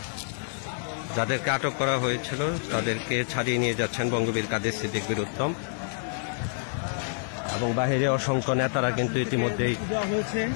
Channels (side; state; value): right; silent; digital silence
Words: যাদেরকে আটক করা হয়েছিল তাদেরকে ছাড়িয়ে নিয়ে যাচ্ছেন বঙ্গবীর কাদের সিদ্দিক বীরুত্তম এবং বাহিরে অসংখ্য নেতারা কিন্তু ইতিমধ্যেই